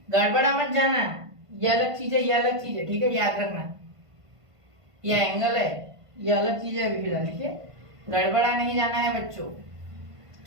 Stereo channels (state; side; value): late; left; 1.5 ms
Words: गड़बड़ा मत जाना, ये अलग चीज है, ये अलग चीज है, ठीक है, याद रखना। ये एंगल है, ये अलग चीज है अभी फिलहाल, ठीक है, गड़बड़ा नहीं जाना है बच्चों